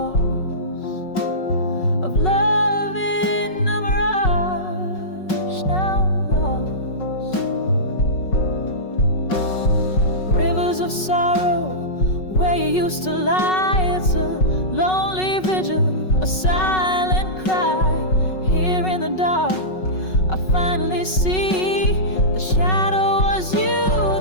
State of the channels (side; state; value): right; late; 5.4 ms